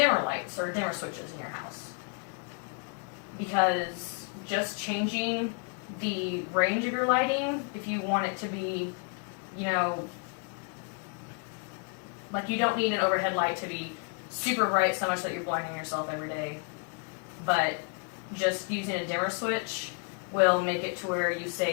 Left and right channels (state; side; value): quieter; right; 39.6 dB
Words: lights or dimmer switches in your house. Because just changing the range of your lighting. If you want it to be, you know, like you don't need an overhead light to be super bright so much that you're blinding yourself every day, but just using a dimmer switch will make it to where you